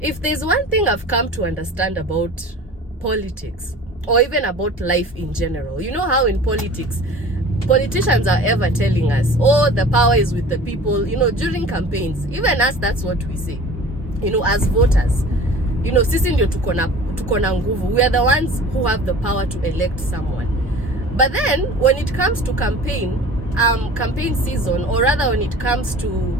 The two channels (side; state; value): both; normal; correlation 0.42